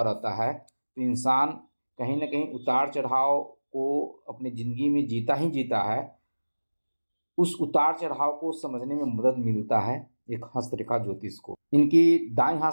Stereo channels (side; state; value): both; inverted; correlation -1.00